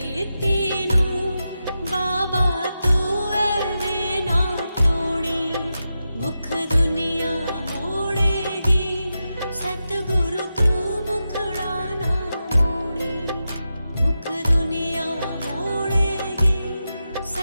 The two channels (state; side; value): inverted; both; correlation -0.90